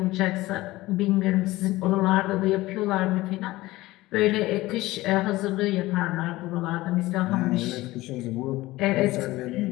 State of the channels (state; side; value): quieter; right; 18.5 dB